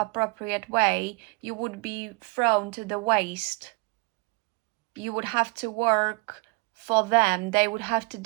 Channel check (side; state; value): left; quieter; 28.3 dB